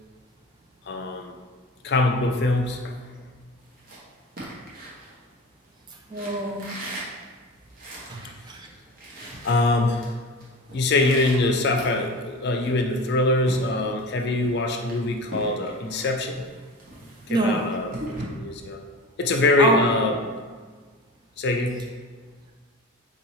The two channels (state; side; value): normal; both; correlation 0.32